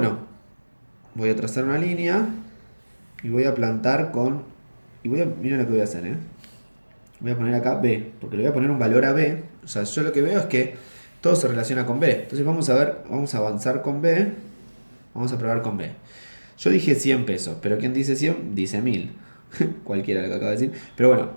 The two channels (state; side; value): inverted; both; correlation -1.00